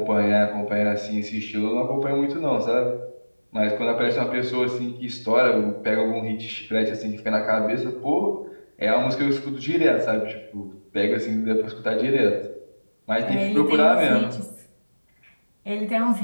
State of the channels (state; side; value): inverted; both; correlation -1.00